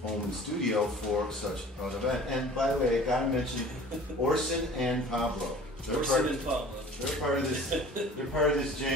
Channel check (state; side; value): normal; both; correlation 0.45